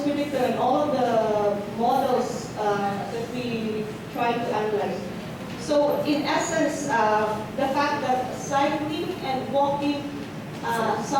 predictor in all of the models that we try to analyze. So in essence, the fact that cycling and walking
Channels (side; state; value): both; identical; correlation 1.00